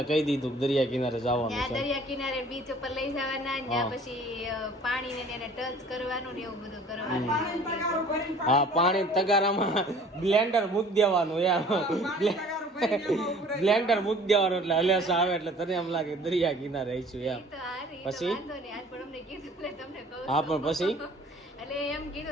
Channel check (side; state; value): both; normal; correlation 0.50